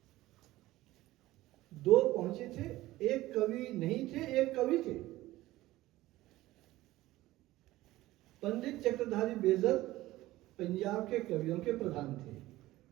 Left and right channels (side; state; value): left; quieter; 17.0 dB